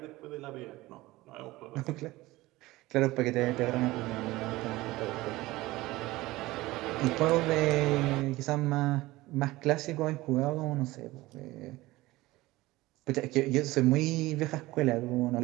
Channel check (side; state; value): left; quieter; 19.0 dB